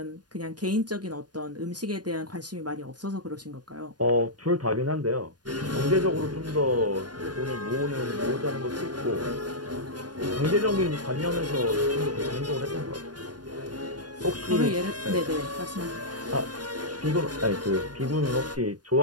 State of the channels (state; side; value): late; left; 0.69 ms